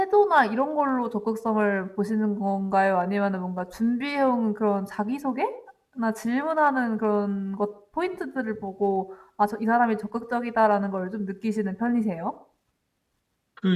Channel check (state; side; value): identical; both; correlation 1.00